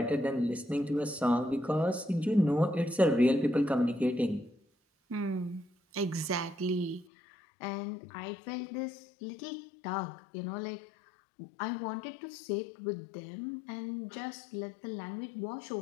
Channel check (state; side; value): drops out; right; at 7.1 s